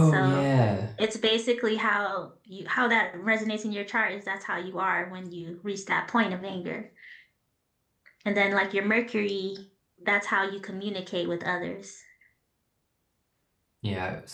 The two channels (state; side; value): identical; both; correlation 1.00